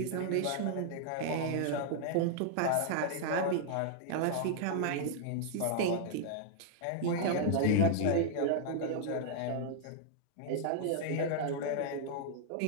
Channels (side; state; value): both; different; correlation -0.01